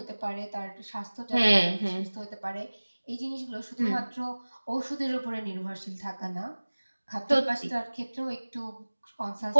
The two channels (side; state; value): both; inverted; correlation -1.00